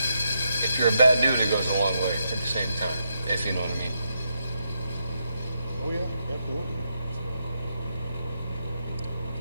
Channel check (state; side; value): inverted; both; correlation -0.81